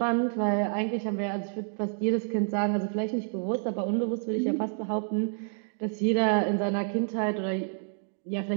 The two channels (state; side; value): silent; left; digital silence